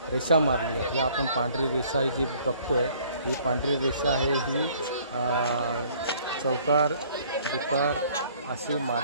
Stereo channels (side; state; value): both; inverted; correlation -0.58